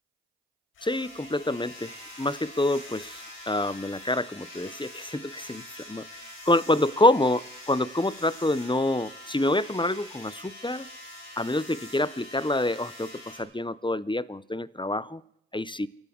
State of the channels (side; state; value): both; normal; correlation 0.56